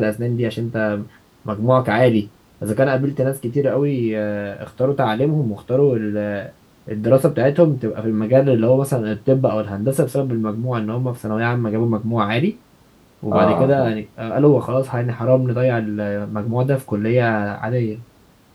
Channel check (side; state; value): both; identical; correlation 1.00